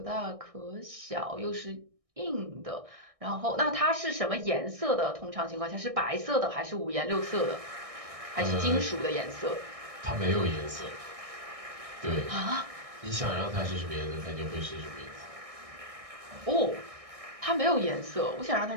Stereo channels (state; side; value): late; left; 1.6 ms